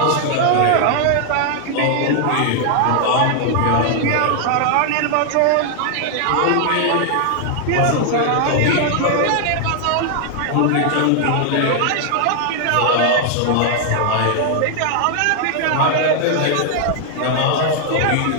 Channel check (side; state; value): both; different; correlation 0.00